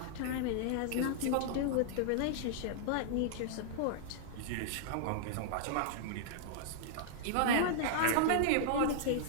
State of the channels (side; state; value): both; different; correlation -0.01